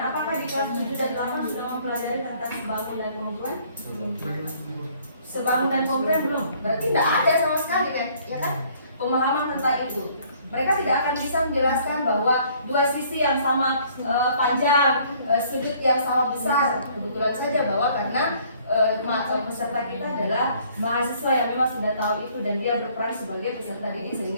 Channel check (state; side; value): inverted; both; correlation -0.60